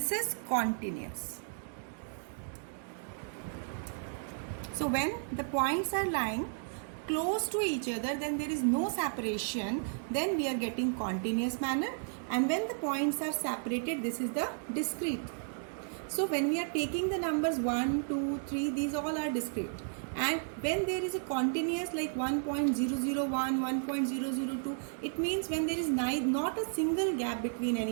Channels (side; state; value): left; silent; digital silence